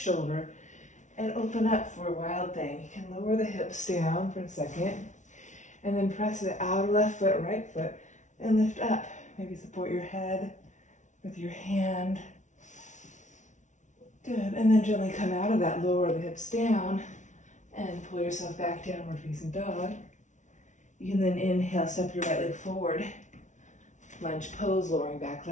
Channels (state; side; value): late; right; 0.36 ms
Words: and open up for a wild thing. You can lower the hips down for a second, and then press the outer left foot, right foot, and lift up. Maybe support your head with your hand. Good, and then gently come out of that, lower the hips down, and pull yourself back, downward facing dog. You can then inhale, step your right leg forward, lunge pose, lowering back